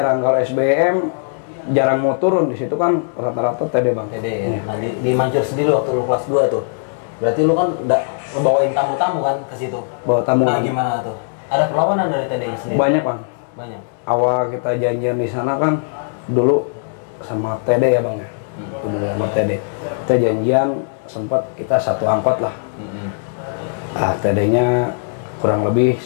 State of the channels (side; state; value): right; silent; digital silence